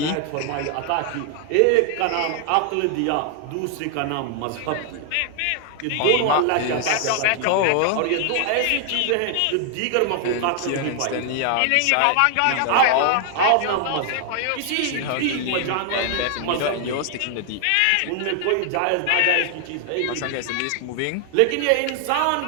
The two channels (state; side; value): different; both; correlation 0.00